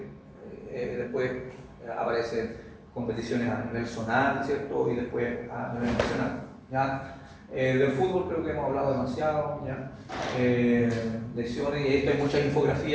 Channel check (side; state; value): both; identical; correlation 1.00